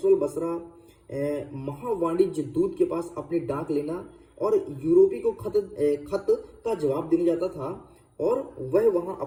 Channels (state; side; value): identical; both; correlation 1.00